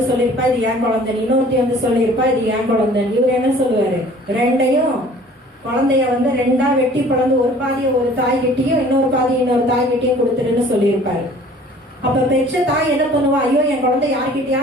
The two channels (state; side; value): normal; both; correlation 0.51